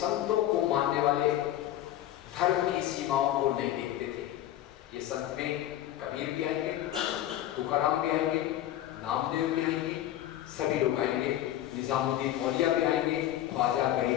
को मानने वाले धर्म की सीमाओं को नहीं देखते थे। ये संत में कबीर भी आएंगे, तुकाराम भी आएंगे, नामदेव भी आएंगे, सभी लोग आएंगे, निजामुद्दीन औलिया भी आएंगे, ख्वाजा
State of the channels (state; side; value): quieter; right; 13.0 dB